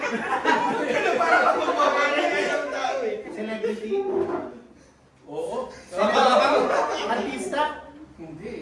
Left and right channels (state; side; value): identical; both; correlation 1.00